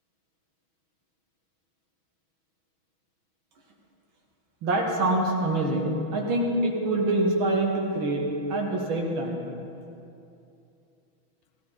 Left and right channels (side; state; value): left; late; 6.2 ms